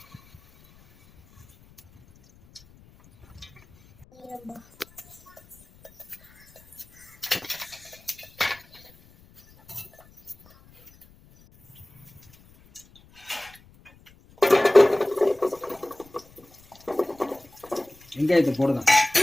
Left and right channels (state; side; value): noise; left; rumble, 27 dB below the sound